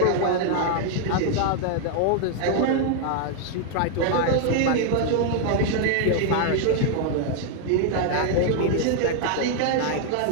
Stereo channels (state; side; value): different; both; correlation 0.00